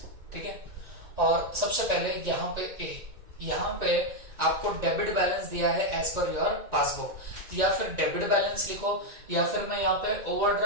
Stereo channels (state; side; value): late; left; 1.9 ms